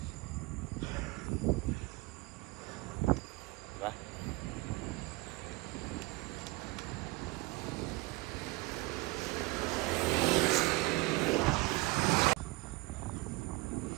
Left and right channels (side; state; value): left; quieter; 22.4 dB